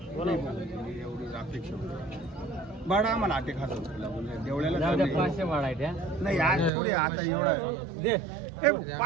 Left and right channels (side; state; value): left; drops out; at 6.7 s